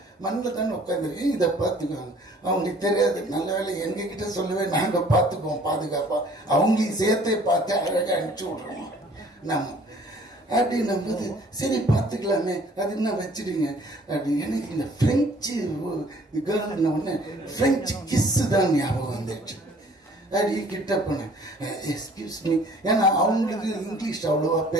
மண்ணில் தானே உட்காந்துருக்கேன், இதை பார்த்துக்குவாங்க. அவங்களுக்கு தெரியாது. நல்ல வேலை எங்ககிட்ட சொல்லவே நாங்கள் பார்த்துக்குவோம் பாதுகாப்பாக, அவங்களையும் சேர்த்தே பார்த்து அழகாக அனுப்பிச்சி விட்றோம் நம்ம அப்படின்னும் போது சரி பார்த்துக்கலாமே அது என்ன வச்சிடுங்க அப்படி. எனக்கு இந்த பிரெஞ்சு கேர்ள்ன உடனே பிரெஞ்சு கிஸ்ஸு தான் ஞாபகம் வந்துடுச்சு. அப்படி கிட்ட போனேன். எக்ஸ்கியூஸ் மீ, ஏன்னா அவங்களுக்கு இங்கிலீஷ் அவ்வளோவா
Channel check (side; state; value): both; normal; correlation 0.55